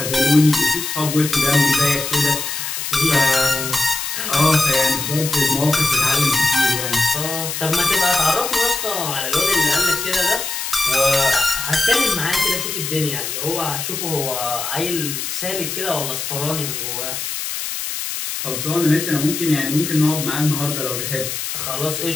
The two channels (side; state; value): left; noise; hiss, 4 dB below the sound